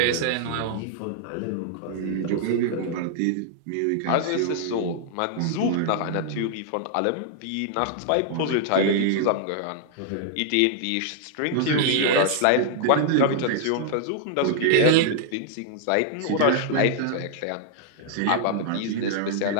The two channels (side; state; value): both; different; correlation -0.01